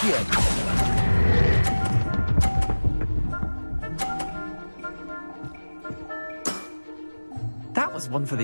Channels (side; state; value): both; inverted; correlation -1.00